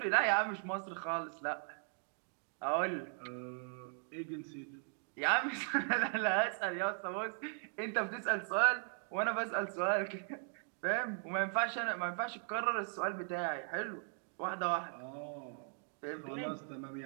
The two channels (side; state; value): left; silent; 52 dB below the other